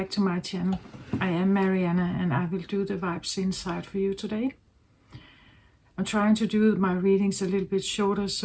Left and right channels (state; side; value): identical; both; correlation 1.00